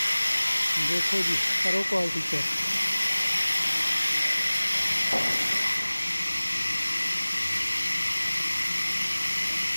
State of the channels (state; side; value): inverted; both; correlation -1.00